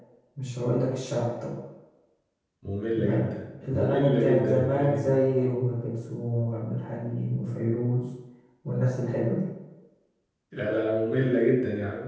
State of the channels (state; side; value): identical; both; correlation 1.00